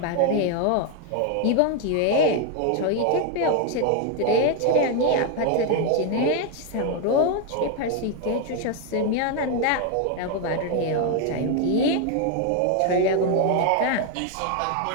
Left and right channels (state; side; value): different; both; correlation 0.01